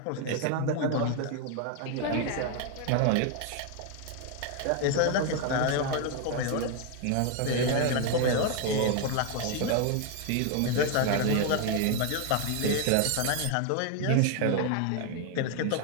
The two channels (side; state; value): both; different; correlation 0.01